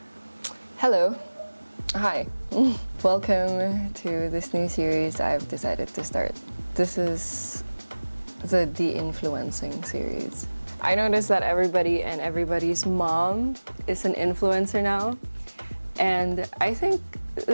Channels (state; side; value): inverted; both; correlation -1.00